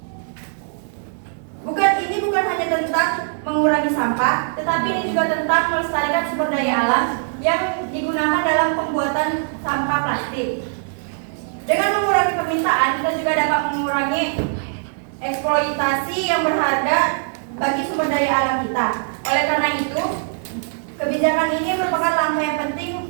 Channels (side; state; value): left; silent; digital silence